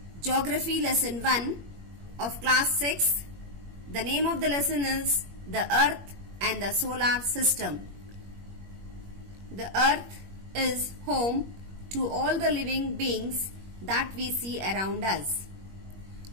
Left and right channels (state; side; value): late; left; 21 ms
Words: Geography Lesson 1 of Class 6. The name of the lesson is The Earth and the Solar System. The Earth is home to all the living beings that we see around us.